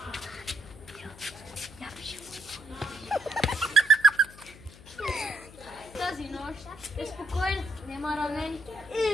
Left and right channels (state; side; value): noise; left; hum, 19 dB below the sound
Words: Тази нощ е спокойна, нема ранени.